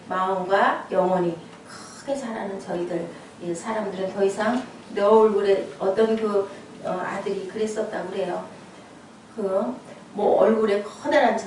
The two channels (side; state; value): both; identical; correlation 1.00